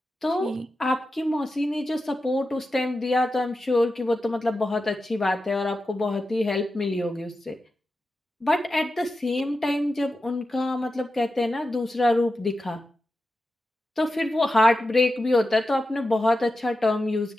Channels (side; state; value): both; normal; correlation 0.91